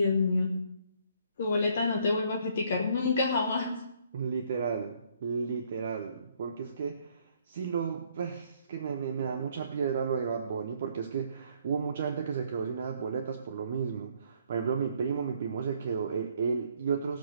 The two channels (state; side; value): inverted; both; correlation -0.66